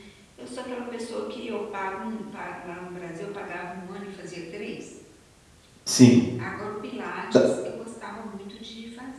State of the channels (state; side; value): identical; both; correlation 1.00